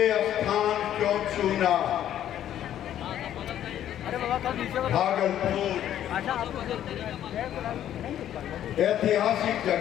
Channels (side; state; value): right; quieter; 11.2 dB